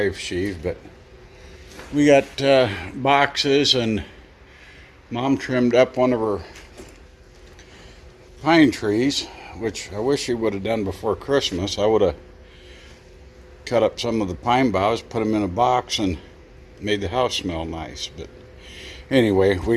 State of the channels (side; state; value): both; identical; correlation 1.00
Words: sheave, but we got boxes, and Mom trimmed up one of her pine trees, which I wish she would have done before Christmas. I would have cut up some of the pine boughs, put them in a box, and made the house smell nice. But anyway,